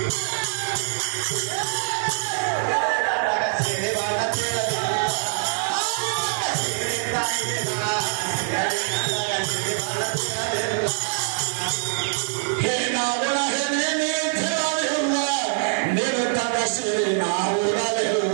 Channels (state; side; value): silent; left; 61 dB below the other